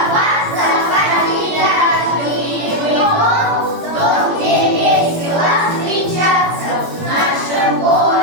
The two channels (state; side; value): late; left; 17 ms